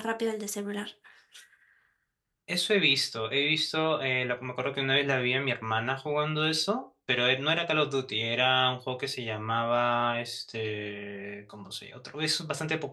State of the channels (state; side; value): identical; both; correlation 1.00